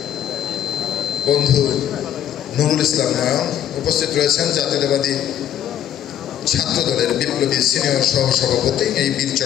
বন্ধু নুরুল ইসলাম নয়ন। উপস্থিত রয়েছেন জাতীয়তাবাদী ছাত্রদলের বিপ্লবী সিনিয়র সহসভাপতি, এই বীর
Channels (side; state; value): right; quieter; 10.4 dB